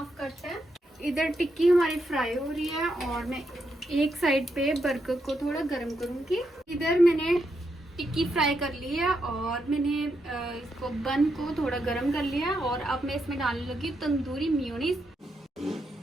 कट है। इधर टिक्की हमारी फ्राई हो रही है और मैं एक साइड पे बर्गर को थोड़ा गर्म करूंगी। इधर मैंने टिक्की फ्राई कर ली है और मैंने इसको बन को थोड़ा गर्म कर लिया है, और अब मैं इसमें डालने लगी तंदूरी मेयोनीज।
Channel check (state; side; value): normal; both; correlation 0.82